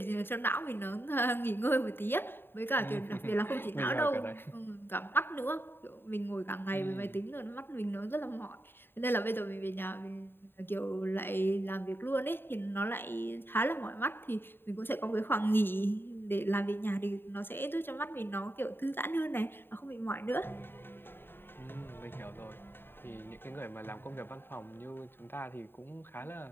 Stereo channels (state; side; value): late; right; 0.10 ms